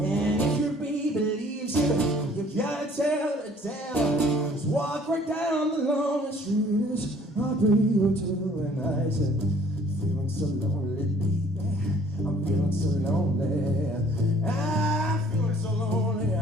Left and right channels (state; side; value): normal; both; correlation 0.56